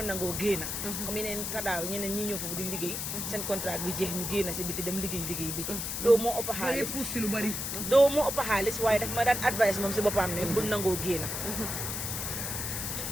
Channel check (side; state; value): left; noise; hiss, 3 dB below the sound